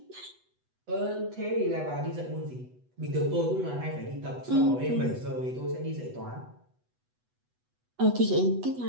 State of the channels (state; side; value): late; left; 8.1 ms